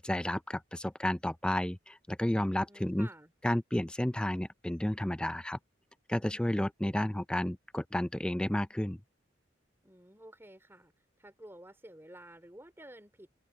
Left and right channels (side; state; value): both; normal; correlation 0.97